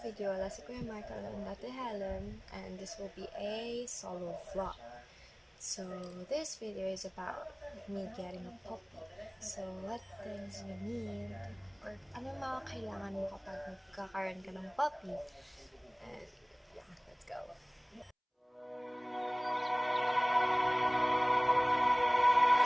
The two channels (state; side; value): identical; both; correlation 1.00